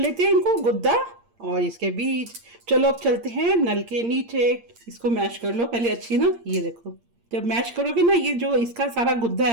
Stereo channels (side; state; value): left; late; 8.6 ms